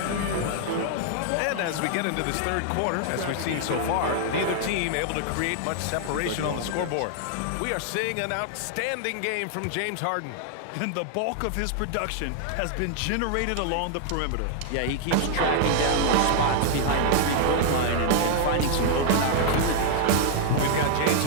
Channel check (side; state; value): both; different; correlation 0.00